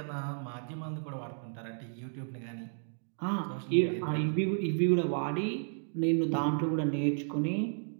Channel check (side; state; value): left; silent; digital silence